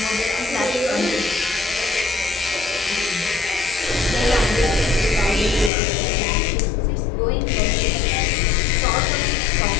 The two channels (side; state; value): right; drops out; at 5.7 s